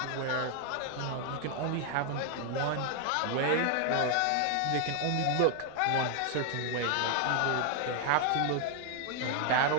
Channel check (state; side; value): different; both; correlation 0.00